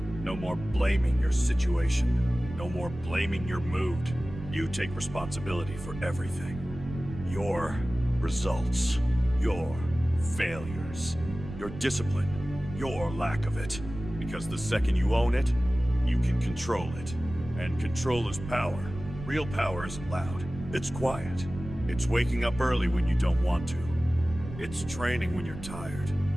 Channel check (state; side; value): noise; right; rumble, 11 dB below the sound